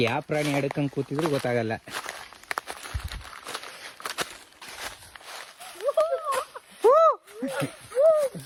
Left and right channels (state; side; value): identical; both; correlation 1.00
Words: ಯಾವ ಪ್ರಾಣಿ ಆಡಕ್ಕಂಗೆ ಕೂತಿದ್ರು ಗೊತ್ತಾಗಲ್ಲ.